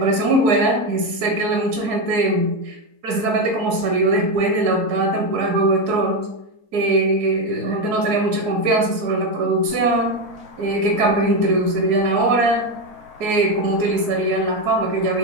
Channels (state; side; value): late; left; 4.7 ms